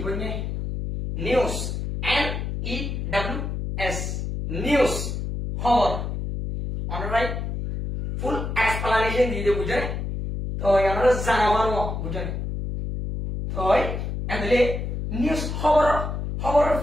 বলনে news N E W S news খবর অলরাইট ফুল এক্সপ্লেনেশন দিয়ে বুঝছেন তো আমরা জানাবানো বুঝছেন তো এন্ডলে নিউজ খবর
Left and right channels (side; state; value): left; noise; hum, 4 dB below the sound